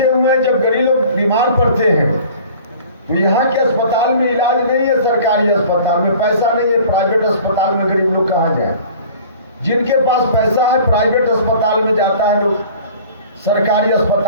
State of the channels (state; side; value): inverted; both; correlation -0.46